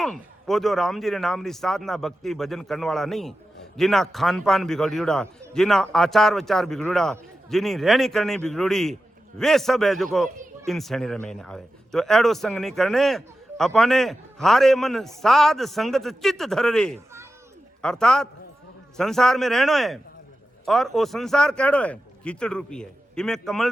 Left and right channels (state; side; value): normal; both; correlation 0.92